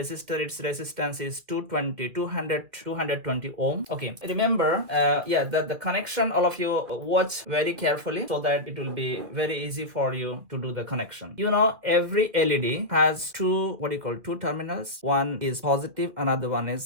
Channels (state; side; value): late; left; 2.8 ms